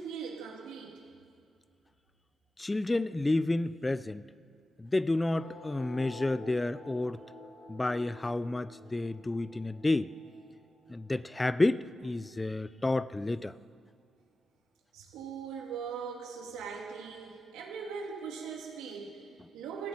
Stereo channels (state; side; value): normal; both; correlation 0.95